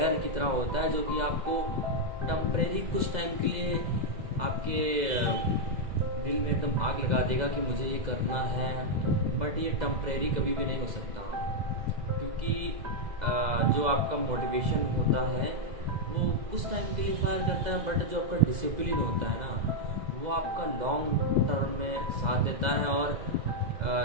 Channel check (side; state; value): left; late; 2.0 ms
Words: की तरह होता है, जो कि आपको टम्परेरी कुछ टाइम के लिए आपके दिल में एकदम आग लगा देगा कि मुझे ये करना है। बट ये टम्परेरी कभी भी नहीं हो सकता, क्योंकि जो आपका मोटिवेशन होता है वो कुछ टाइम के लिए फायर करता है, बट जो आपका डिसिप्लिन होता है ना, वो आपका लॉन्ग टर्म में साथ देता है। और